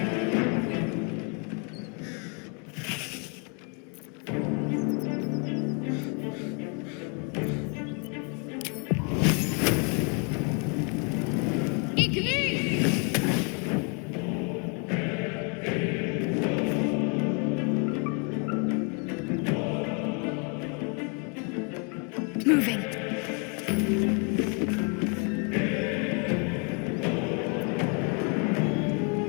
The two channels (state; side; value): quieter; right; 36.6 dB